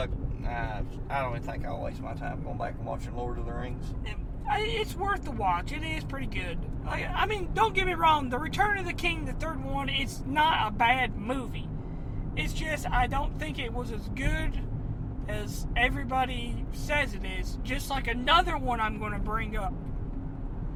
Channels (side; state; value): both; identical; correlation 1.00